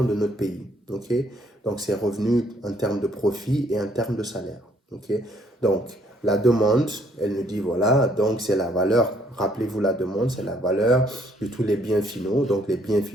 de notre pays. Okay? Donc, c'est revenus en termes de profit et en termes de salaire. Okay? Donc, la demande, elle nous dit, voilà, donc c'est la valeur, rappelez-vous la demande, c'est la valeur de tous les biens finaux. Donc, les biens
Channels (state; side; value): normal; both; correlation 0.66